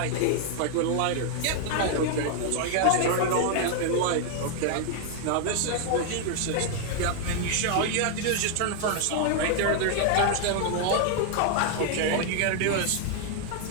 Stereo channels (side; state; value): both; different; correlation 0.00